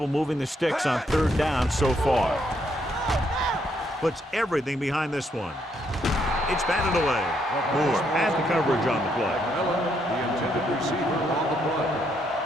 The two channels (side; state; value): both; normal; correlation 0.74